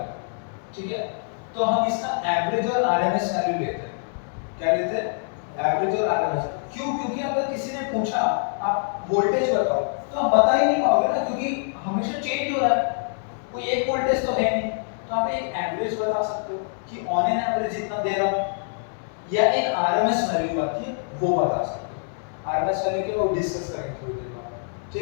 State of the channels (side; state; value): right; silent; 62 dB below the other